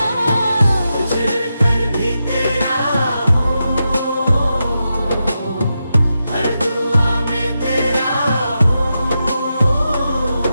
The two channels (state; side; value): inverted; both; correlation -0.88